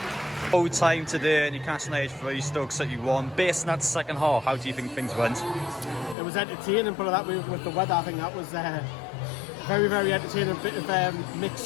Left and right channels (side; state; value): right; drops out; at 6.2 s